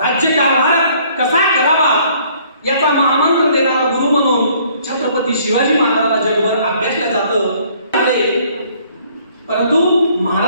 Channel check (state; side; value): inverted; both; correlation -0.60